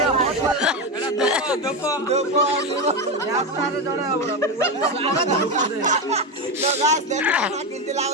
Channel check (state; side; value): normal; both; correlation 0.14